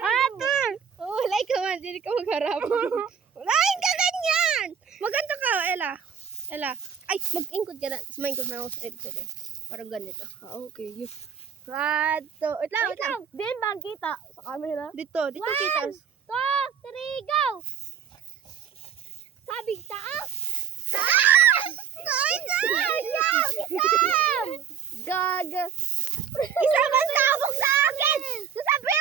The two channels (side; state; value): left; quieter; 7.6 dB